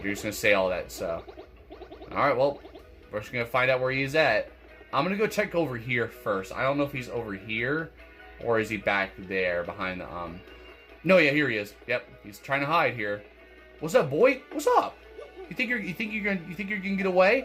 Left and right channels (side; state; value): both; identical; correlation 1.00